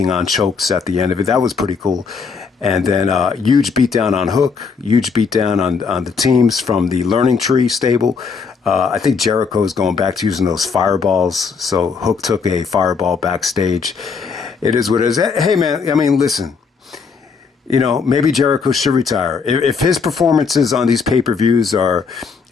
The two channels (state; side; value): quieter; right; 5.4 dB